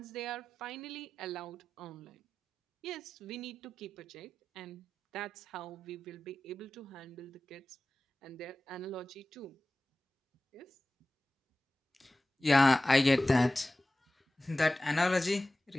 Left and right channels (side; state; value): both; normal; correlation 0.95